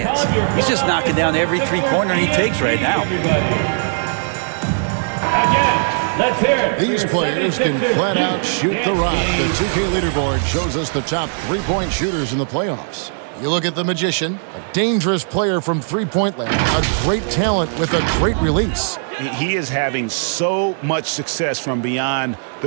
He's just knocking down every three-pointer he takes right now. Again, let's hear it. These players can flat out shoot the rock. The 2K leaderboard shows us the top three-point shooters in the playoffs. You look at the Magician, a dangerous player from three-point land, a great talent with a great release. He is having so much success from beyond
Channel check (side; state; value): left; silent; digital silence